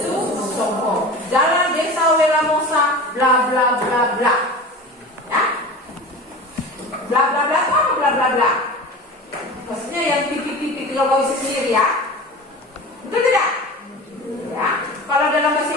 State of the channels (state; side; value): normal; both; correlation 0.34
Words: Songko, Jalan Desa Welamosa, bla bla bla bla. Ya, bla bla bla itu apa bla bla bla? Maksudnya yang titik-titik kalau kau isi sendiri ya, betul tidak? Ya, kalau dalam bahasa